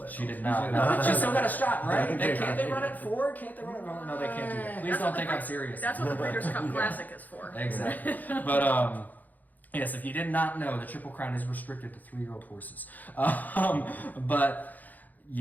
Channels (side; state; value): right; late; 0.082 ms